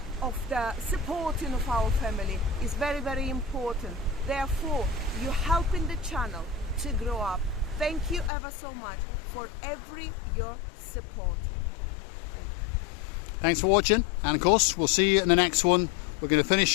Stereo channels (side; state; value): right; drops out; at 8.3 s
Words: of the supporting of our family is very important. Therefore, you're helping the channel to grow up. Thank you ever so much for your support. Thanks for watching, and of course we'll see you in the next one. We're going to